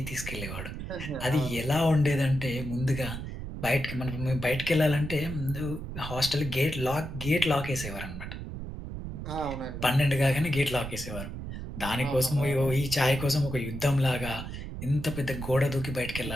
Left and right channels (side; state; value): right; noise; rumble, 8 dB below the sound